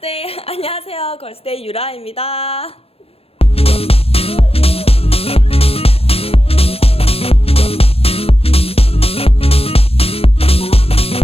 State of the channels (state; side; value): late; right; 0.28 ms